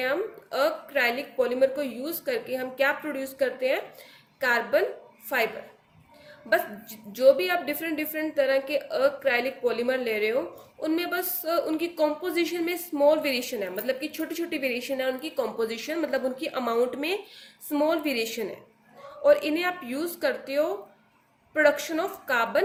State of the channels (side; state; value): both; identical; correlation 1.00